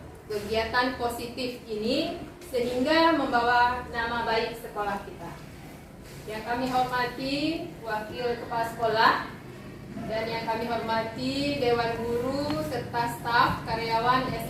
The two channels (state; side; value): identical; both; correlation 1.00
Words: kegiatan positif ini sehingga membawa nama baik sekolah kita. Yang kami hormati Wakil Kepala Sekolah dan yang kami hormati Dewan Guru serta staf karyawan